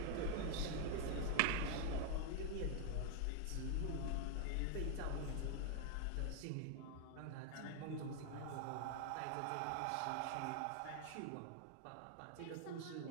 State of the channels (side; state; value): both; different; correlation 0.01